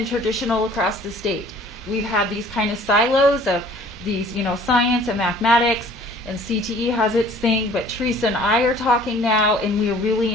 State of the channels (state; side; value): normal; both; correlation 0.52